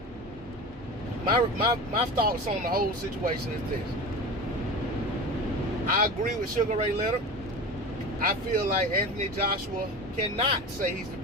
my thoughts on the whole situation is this. I agree with Sugar Ray Leonard. I feel like Anthony Joshua cannot say he's the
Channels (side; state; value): both; normal; correlation 0.31